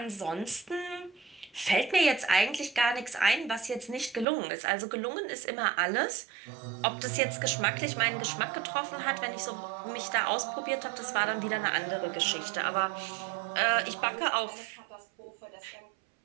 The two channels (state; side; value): drops out; left; at 4.2 s